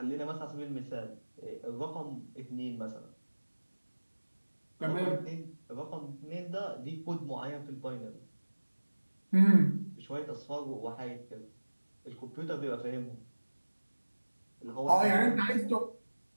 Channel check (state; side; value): inverted; both; correlation -1.00